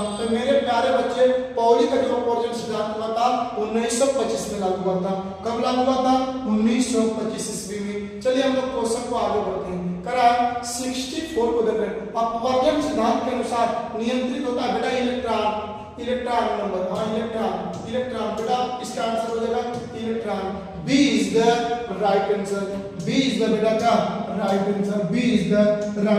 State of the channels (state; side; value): identical; both; correlation 1.00